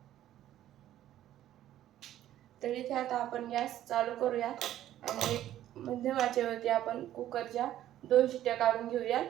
तर इथे आता आपण गॅस चालू करूया आणि मध्यम आचेवरती आपण कुकरच्या 2 शिट्ट्या काढून घेऊया।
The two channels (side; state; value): left; quieter; 12.6 dB